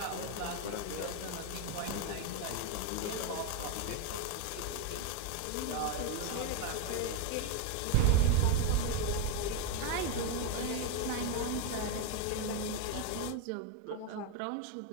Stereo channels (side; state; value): both; different; correlation 0.02